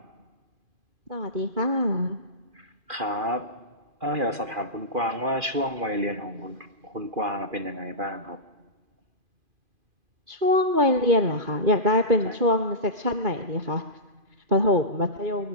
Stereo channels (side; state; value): left; late; 2.4 ms